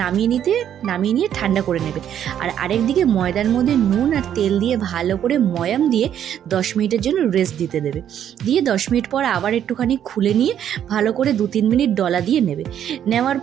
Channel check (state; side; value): quieter; left; 9.9 dB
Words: নামিয়ে নিয়ে ঠান্ডা করে নেবে। আর আরেকদিকে ময়দার মধ্যে নুন আর তেল দিয়ে ভালো করে ময়াম দিয়ে 10 মিনিটের জন্য রেস্ট দিতে দেবে। দিয়ে 10 মিনিট পর আবার একটুখানি খুলে নিয়ে ভালো করে 2-3 মিনিট ডলা দিয়ে নেওয়ার